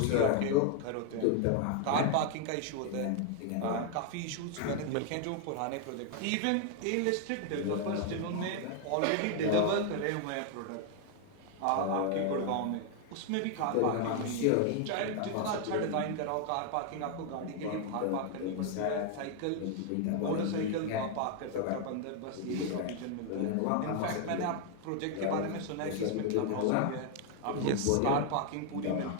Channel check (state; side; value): different; both; correlation 0.00